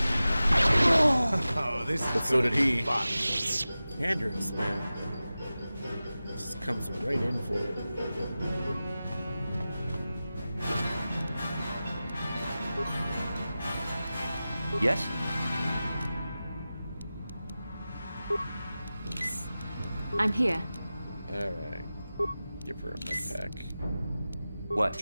Oh, this but so did he. Andrews, man. Just comes right in for it. Yes? I'm here. Alright. Give her a med pack. What?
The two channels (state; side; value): inverted; both; correlation -0.95